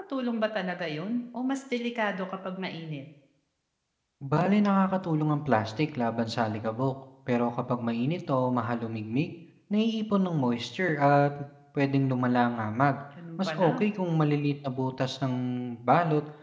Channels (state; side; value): identical; both; correlation 1.00